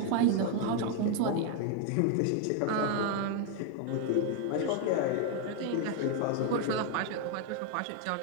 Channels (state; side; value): different; both; correlation 0.01